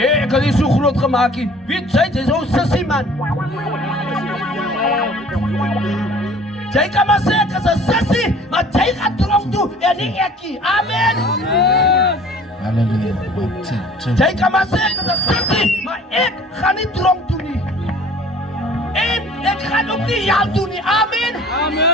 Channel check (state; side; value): normal; both; correlation 0.49